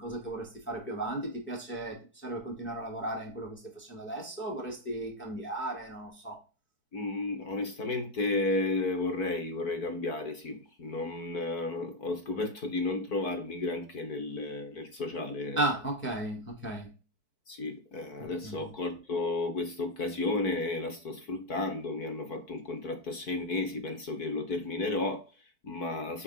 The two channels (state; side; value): late; right; 4.6 ms